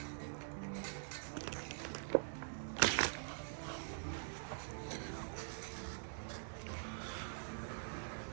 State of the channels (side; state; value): left; silent; digital silence